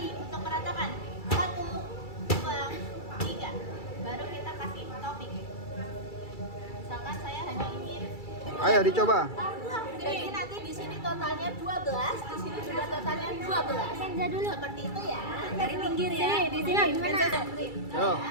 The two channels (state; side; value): late; right; 2.3 ms